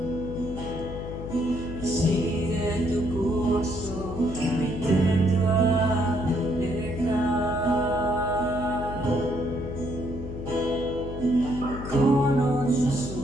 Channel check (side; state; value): left; noise; hum, 8 dB below the sound